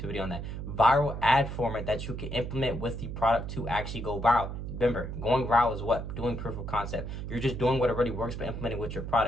video on that. Viral ad format that you can implement with the product to actually go viral. Remember, going viral is what? Doing proof of concept. You're just doing what already works, but implementing with your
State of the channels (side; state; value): right; noise; hum, 6 dB below the sound